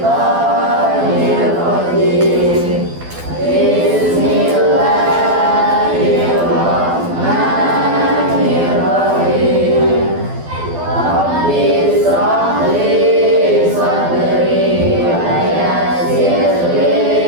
rajim. Bismillahirrahmanirrahim. Rabbi shrah li sadri wa yassir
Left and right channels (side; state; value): left; late; 12 ms